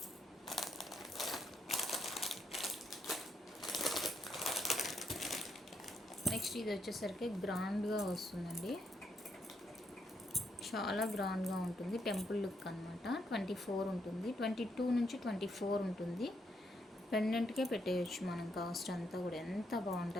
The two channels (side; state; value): both; normal; correlation 0.77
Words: నెక్స్ట్ ఇది వచ్చేసరికి గ్రాండ్గా వస్తుందండి, చాలా గ్రాండ్గా ఉంటుంది. టెంపుల్ లుక్ అనమాట. 24 ఉంటుంది. 22 నుంచి 24 ఉంటుంది. పెండెంట్కే పెట్టేయచ్చు మనం. కాస్ట్ అంతా కూడా ఎంత